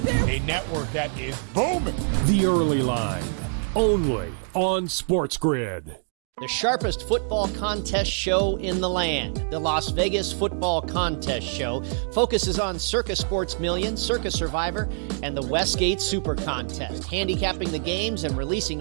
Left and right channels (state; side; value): silent; left; digital silence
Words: there. A network that is booming. The Early Line, only on SportsGrid. The sharpest football contest show in the land, the Las Vegas Football Contest Show, focuses on Circus Sports Million, Circus Survivor, and the Westgate Super Contest, handicapping the games and releasing